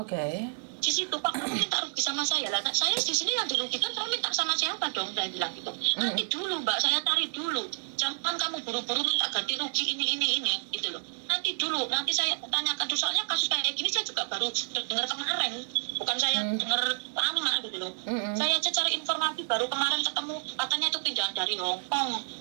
Di situ Pak, kamu minta rugi sama saya lah. Saya di sini yang dirugikan, kamu minta sama siapa dong? Saya bilang gitu. Nanti dulu Mbak, saya cari dulu. Jangan kamu buru-buru minta ganti rugi ini gitu loh. Nanti dulu, nanti saya tanyakan tuh, soalnya kasus kayak gini saya juga baru dengar kemarin. Bukan saya dengar lama gitu loh. Saya aja cari informasi baru kemarin ketemu, katanya itu pindahan dari Hong Kong.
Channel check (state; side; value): silent; left; digital silence